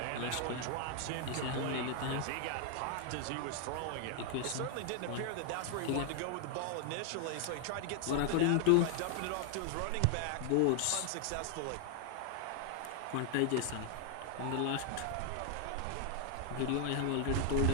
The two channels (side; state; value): both; different; correlation 0.00